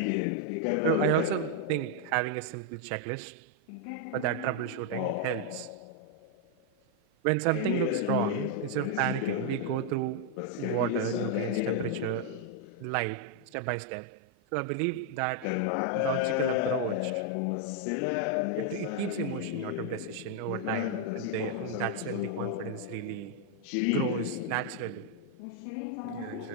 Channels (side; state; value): both; different; correlation 0.00